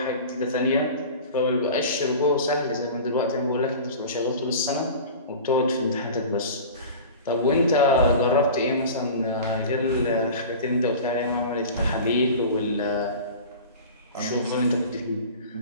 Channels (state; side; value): inverted; both; correlation -0.37